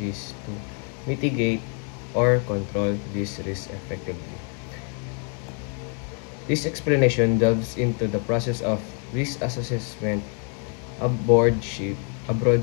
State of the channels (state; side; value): quieter; right; 38.5 dB